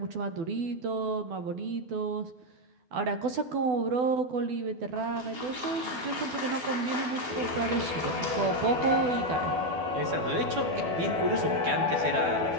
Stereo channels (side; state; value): left; late; 12 ms